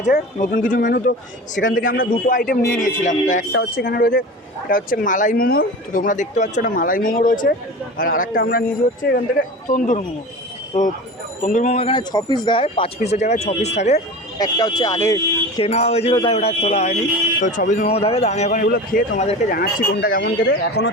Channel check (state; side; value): normal; both; correlation 0.33